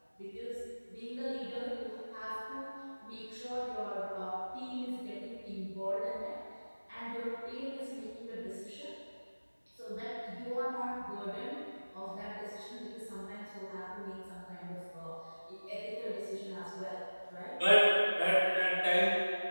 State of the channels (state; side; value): inverted; both; correlation -1.00